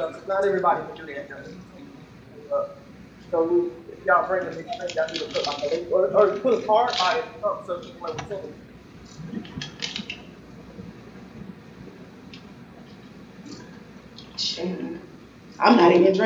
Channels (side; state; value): both; identical; correlation 1.00